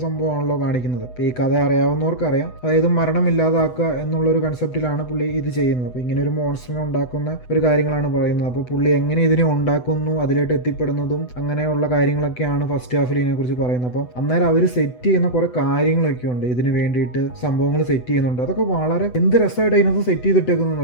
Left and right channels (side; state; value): right; late; 8.0 ms